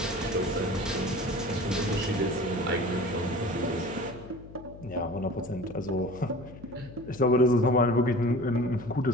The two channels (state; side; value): noise; left; hum, 17 dB below the sound